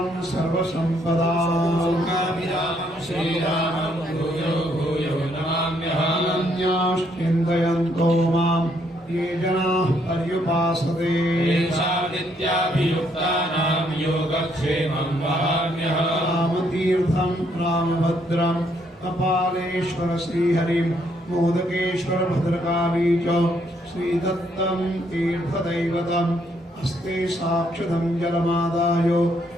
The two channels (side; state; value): both; normal; correlation 0.71